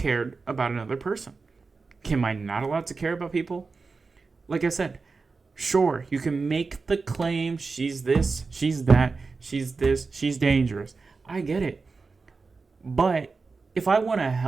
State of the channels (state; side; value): quieter; left; 4.3 dB